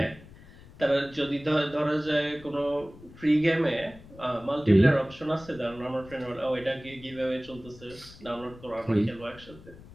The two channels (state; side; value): noise; left; rumble, 20 dB below the sound